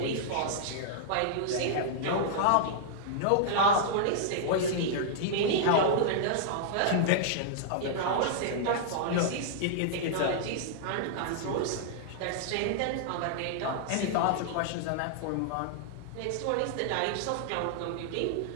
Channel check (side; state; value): both; different; correlation -0.01